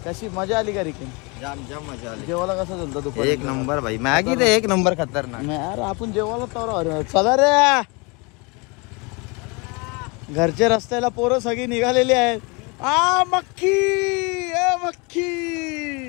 कशी मजा आली का रिकिन? जाम मजा आली. जेवायला कसं चालतं दुपारी? एक नंबर भाई. मॅगी तर एक नंबर खतरनाक. यार आपण जेवायला तर चला रे. घरच्या रस्त्याला पोरं सगळी निघालेली आहेत. मक्खी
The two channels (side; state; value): right; quieter; 29.2 dB